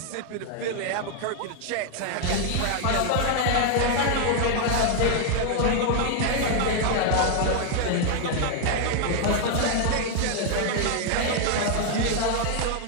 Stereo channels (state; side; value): different; both; correlation 0.00